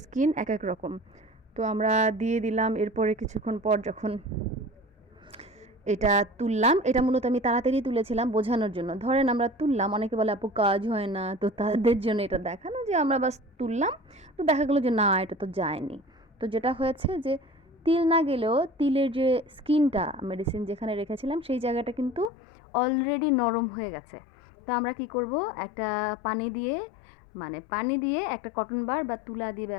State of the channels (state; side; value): drops out; right; at 22.3 s